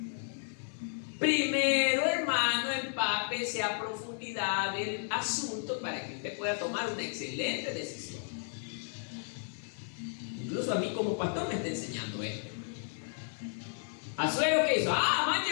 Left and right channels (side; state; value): right; silent; digital silence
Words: Primero, hermano, empápese a profundidad del asunto para que usted pueda tomar una excelente decisión. Incluso a mí como pastor me está enseñando esto. Asuero, ¿qué hizo? Amán